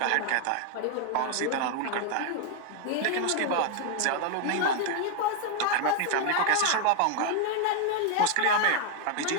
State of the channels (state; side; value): different; both; correlation 0.00